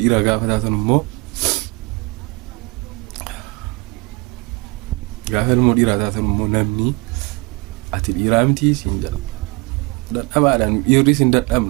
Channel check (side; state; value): left; quieter; 26.8 dB